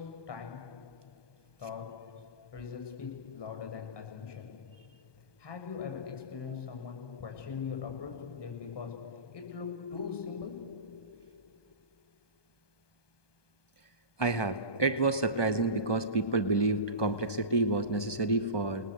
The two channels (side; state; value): right; late; 1.2 ms